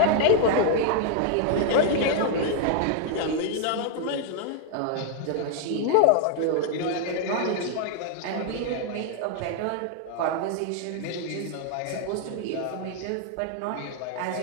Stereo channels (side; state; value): both; different; correlation 0.00